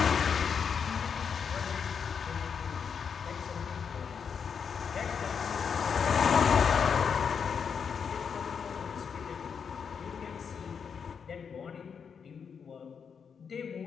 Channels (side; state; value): right; quieter; 6.6 dB